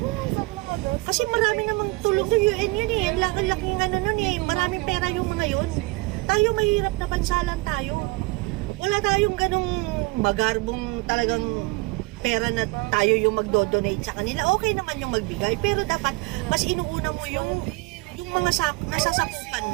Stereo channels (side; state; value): left; quieter; 24.2 dB